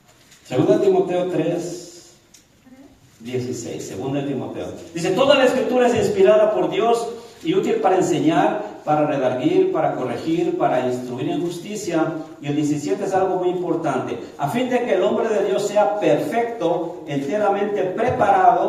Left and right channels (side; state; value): both; identical; correlation 1.00